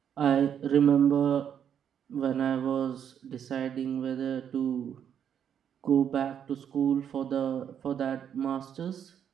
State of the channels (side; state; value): left; quieter; 8.7 dB